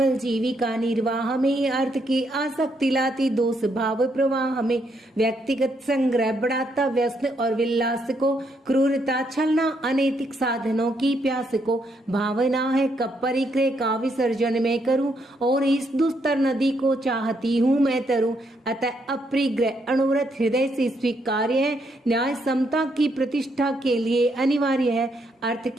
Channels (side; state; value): both; normal; correlation 0.75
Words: जीविका निर्वाह में, अर्थ की आसक्ति लाती दोष भाव प्रवाह में। व्यक्तिगत संग्रह बढ़ाता व्यसन और विलास को, क्रूरता छलना अनैतिक साधनों की प्यास को। भावना है कब परिग्रह का विसर्जन मैं करूं, और इस दुस्तर नदी को चाहती हूं मैं तरूं। अतः अपरिग्रह अणुव्रत हृदय से स्वीकार्य है, न्याय समता की प्रतिष्ठा के लिए अनिवार्य है। अर्थ